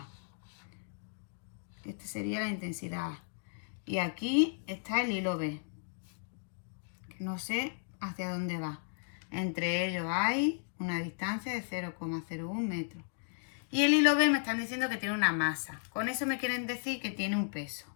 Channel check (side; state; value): right; silent; digital silence